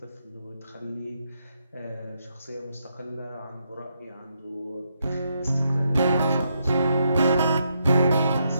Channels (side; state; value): both; inverted; correlation -0.79